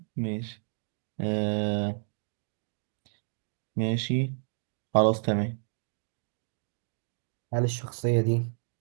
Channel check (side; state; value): left; silent; digital silence